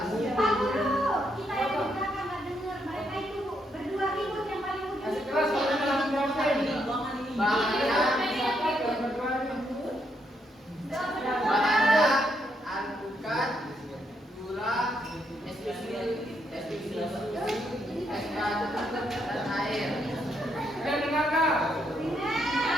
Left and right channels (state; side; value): normal; both; correlation 0.77